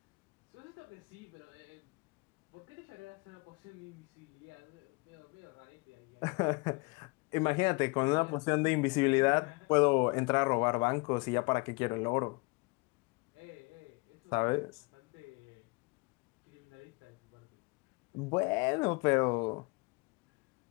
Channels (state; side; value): quieter; right; 27.7 dB